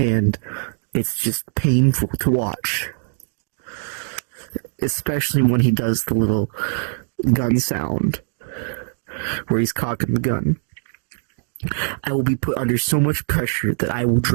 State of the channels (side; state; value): left; silent; digital silence